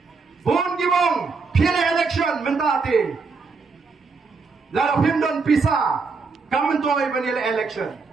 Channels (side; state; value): left; quieter; 4.5 dB